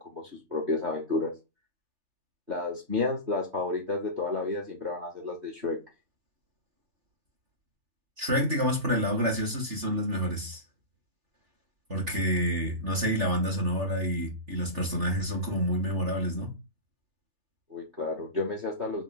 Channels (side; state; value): left; late; 3.4 ms